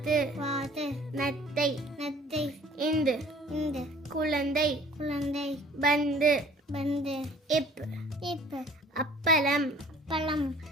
வாத்து, நத்தை நத்தை, இந்து இந்து, குழந்தை குழந்தை, பந்து பந்து, இப் இப், அப்பளம் அப்பளம்,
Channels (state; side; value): normal; both; correlation 0.52